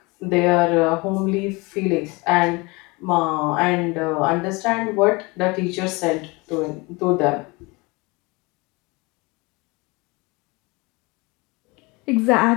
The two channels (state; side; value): quieter; right; 26.0 dB